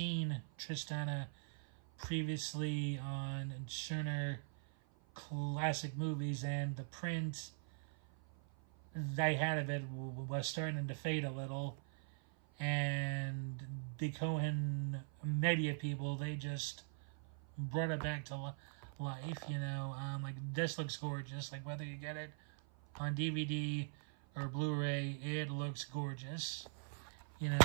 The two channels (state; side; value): silent; left; 50 dB below the other